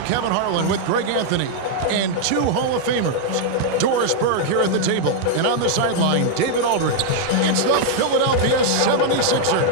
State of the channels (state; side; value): different; both; correlation 0.00